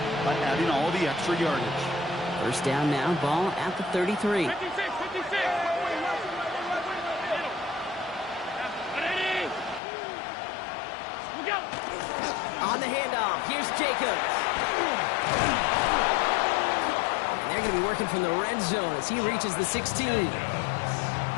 by adding all the extra yardage. First down now, ball at the 33. 56. On the handoff, here's Jacobs. And they're going to be working from the red zone as he reaches the 16. He'll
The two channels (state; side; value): drops out; right; at 9.8 s